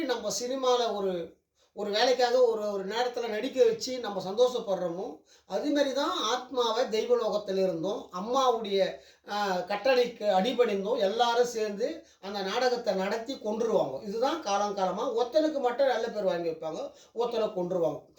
நம்ம சினிமாவில் ஒரு ஒரு வேலைக்காக ஒரு ஒரு நேரத்தில் நடிக்க வச்சு நம்ம சந்தோஷப்படுறோமோ, அதுமாரி தான் ஆத்மாவை தெய்வலோகத்தில் இருந்தோம் அம்மாவுடைய கட்டளைக்கு அடிபணிந்தோம் எல்லாரும் சேர்ந்து அந்த நாடகத்தை நடத்தி கொன்றுருவாங்க. இதுதான் காலங்காலமாக ஒருத்தனுக்கு மட்டும் நல்ல பேர் வாங்கி வைப்பாங்க, ஒருத்தனை கொன்றுருவாங்க.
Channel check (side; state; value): both; identical; correlation 1.00